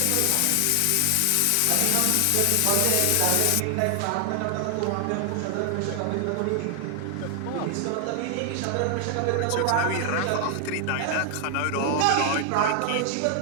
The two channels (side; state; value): both; different; correlation 0.00